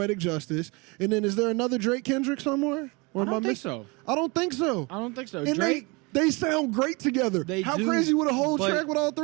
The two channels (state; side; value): quieter; left; 27.6 dB